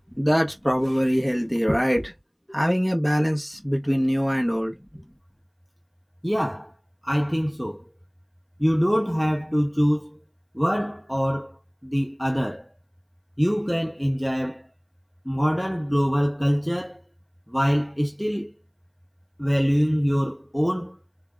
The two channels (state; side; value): identical; both; correlation 1.00